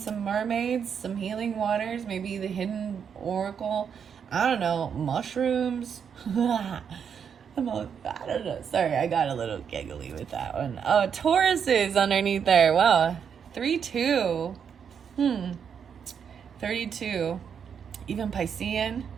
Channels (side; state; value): left; quieter; 7.3 dB